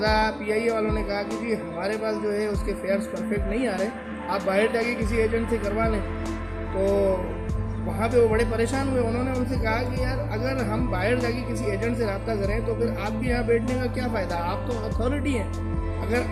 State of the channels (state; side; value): identical; both; correlation 1.00